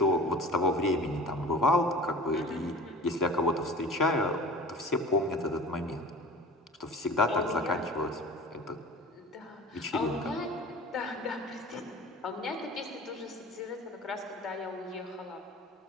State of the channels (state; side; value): normal; both; correlation 0.39